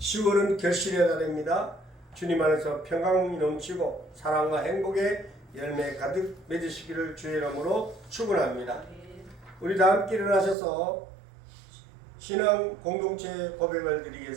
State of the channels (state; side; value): drops out; left; at 10.6 s